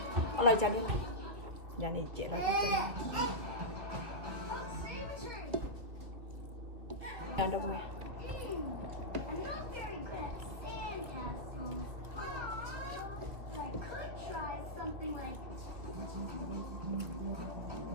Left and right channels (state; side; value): late; left; 2.5 ms